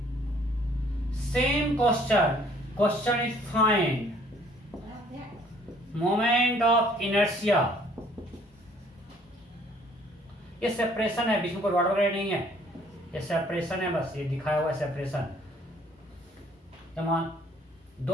Same question is find moment of inertia. ये सेपरेशन है, बीच में कोई रॉड वगैरह नहीं है. ये सेपरेशन है, बस ये दिखाया हुआ है सेपरेशन. तमाम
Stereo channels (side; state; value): both; normal; correlation 0.59